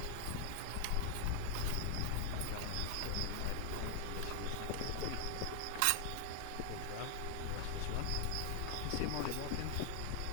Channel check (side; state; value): both; different; correlation 0.00